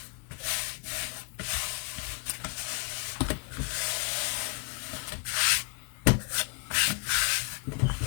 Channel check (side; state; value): right; quieter; 32.2 dB